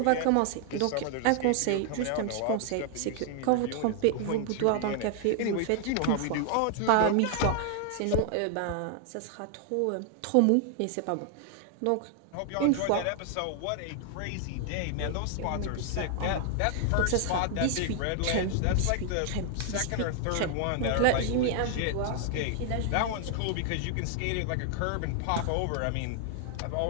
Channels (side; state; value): both; different; correlation 0.00